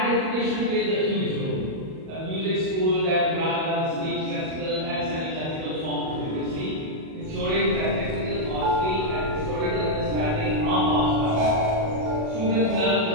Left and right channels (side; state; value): left; late; 37 ms